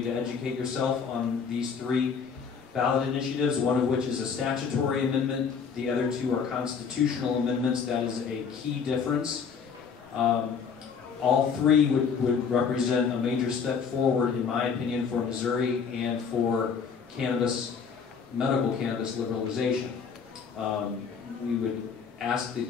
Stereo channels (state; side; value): quieter; right; 6.2 dB